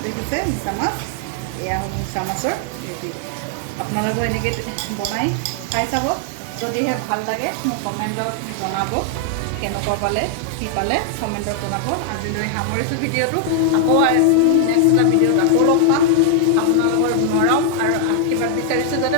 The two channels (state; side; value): different; both; correlation 0.00